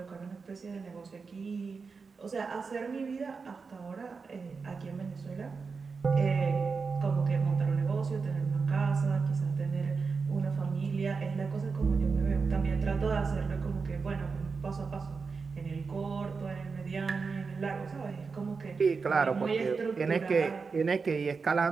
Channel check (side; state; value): left; quieter; 4.9 dB